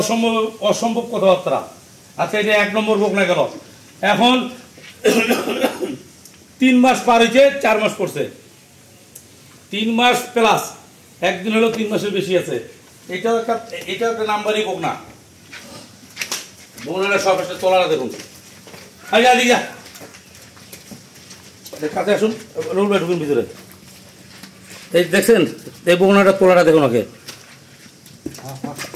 অসম্ভব কথাবার্তা। আচ্ছা এটা 1 নম্বর বকনা গেল। এখন 3 মাস পার হয়েছে, 4 মাস পড়ছে, 3 মাস প্লাস, একদিন হলো 3 মাসের বেশি আছে। এটাও একটা নাম্বারই বকনা। বকনাটা সব একটা তোলাটা দেখুন। কাছে আসুন, রুল ভাই ঢুকুন ভিতরে। এই দেখছেন এই বকনাটা তোলাটা দেখুন ওকে,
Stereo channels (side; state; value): both; identical; correlation 1.00